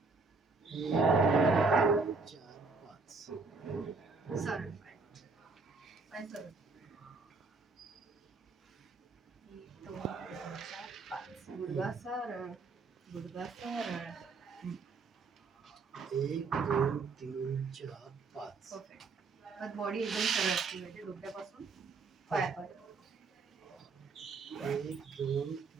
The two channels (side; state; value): left; quieter; 4.2 dB